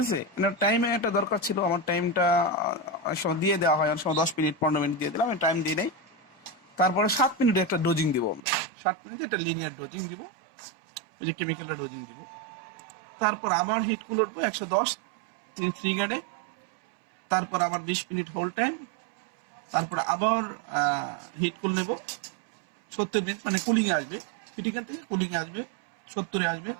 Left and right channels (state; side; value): drops out; left; at 8.4 s